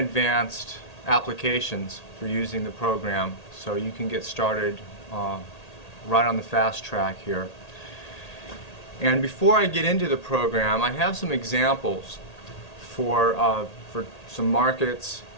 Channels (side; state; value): right; late; 1.8 ms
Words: applications for using the program so you can get started right on the fast track here. And before I get into the program, I have some examples for some markets